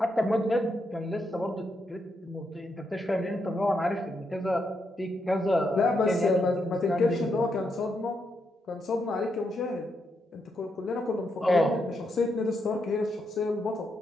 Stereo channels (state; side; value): normal; both; correlation 0.81